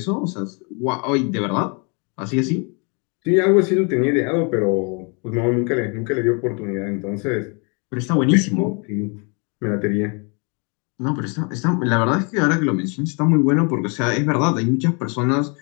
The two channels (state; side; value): quieter; right; 34.4 dB